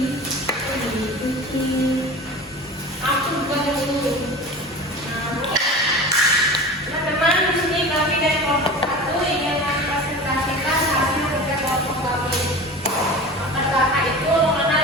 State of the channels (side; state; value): both; normal; correlation 0.34